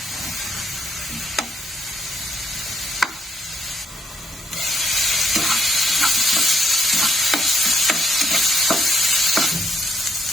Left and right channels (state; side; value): normal; both; correlation 0.71